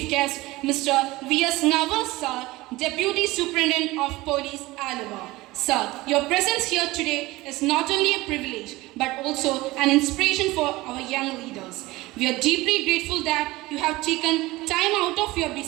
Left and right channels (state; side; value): quieter; left; 19.8 dB